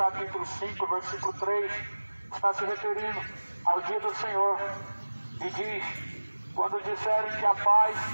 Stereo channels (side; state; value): both; inverted; correlation -1.00